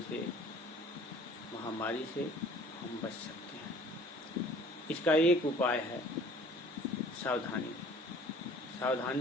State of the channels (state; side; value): normal; both; correlation 0.51